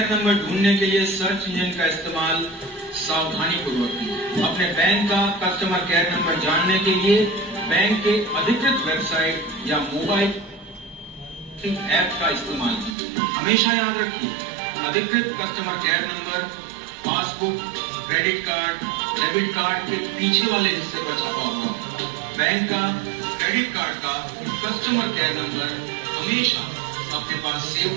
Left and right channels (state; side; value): drops out; left; at 13.0 s